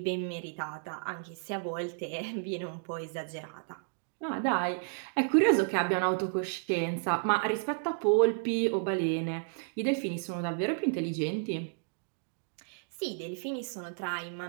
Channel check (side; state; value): left; silent; digital silence